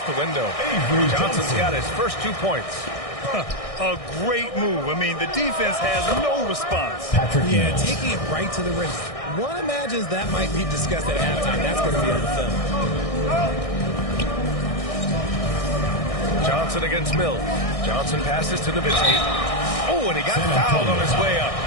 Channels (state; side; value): late; right; 1.6 ms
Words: the window. Avery Johnson's got his first 2 points. A great move. I mean, the defense has no response. Patrick Yeah, Mills. taking it right to the rim. One imagines that might be discussed at halftime. That's going to be on the film. Johnson against Mills. Johnson passes to Nowitzki. Oh, and he got fouled on his way up.